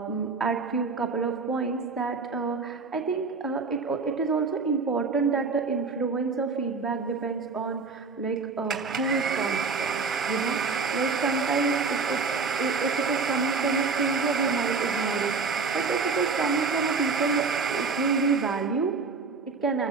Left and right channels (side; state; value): left; quieter; 4.6 dB